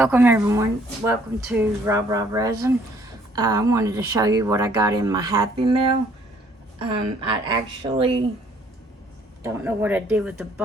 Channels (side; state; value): both; normal; correlation 0.62